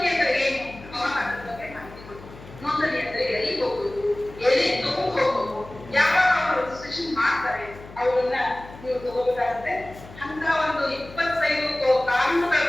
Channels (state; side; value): noise; left; hum, 17 dB below the sound